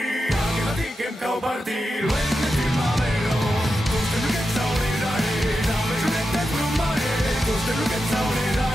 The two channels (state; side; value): normal; both; correlation 0.89